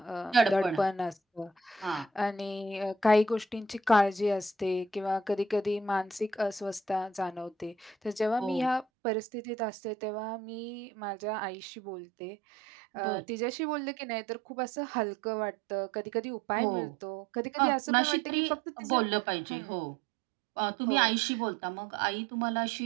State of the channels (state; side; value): drops out; left; at 8.8 s